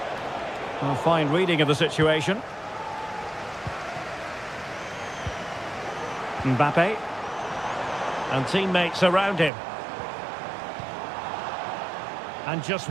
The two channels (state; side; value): drops out; left; at 9.5 s